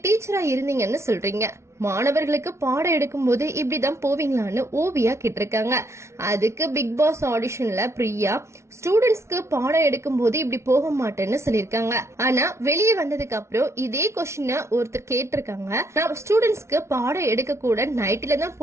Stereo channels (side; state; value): left; late; 0.13 ms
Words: டீச்சரா இருந்தீங்கன்னு சொல்றீங்க, மாணவர்களுக்கு பாடம் எடுக்கும் போது இப்படிதான் போவீங்களான்னு ஓவியா கேட்டிருக்காங்க. அதுக்கு பிக் பாஸ் ஆடிஷன்ல பிரியா ஸ்டூடெண்ட்ஸ்க்கு பாடம் எடுக்கும் போது இப்படி போக மாட்டேன்னு சொல்லிருக்காங்க. ஆனா வெளியே வந்ததுக்கு அப்புறம் இதே கொஸ்டின் ஒருத்தர் கேட்டிருக்காங்க, நான் ஸ்டூடெண்ட்ஸ்க்கு பாடம் எடுக்க கூட நைட்ல தான்